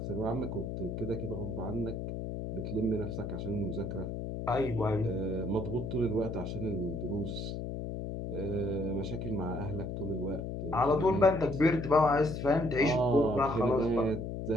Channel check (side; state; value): left; noise; hum, 5 dB below the sound